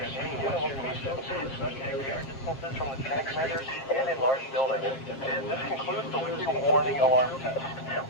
any given location, especially at greater distances from the transmitters and in large buildings. This concludes the weekly warning alarm test.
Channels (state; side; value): late; right; 7.5 ms